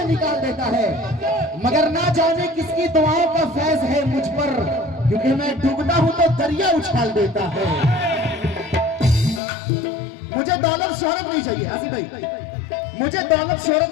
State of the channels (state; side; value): drops out; right; at 9.4 s